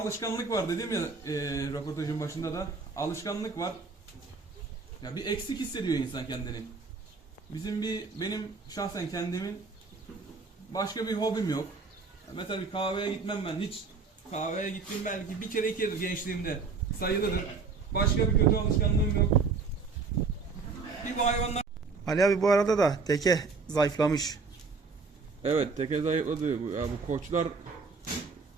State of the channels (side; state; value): left; quieter; 4.6 dB